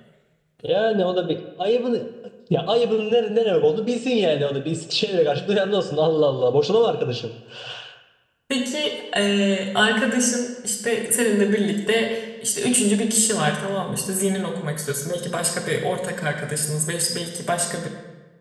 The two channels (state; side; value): identical; both; correlation 1.00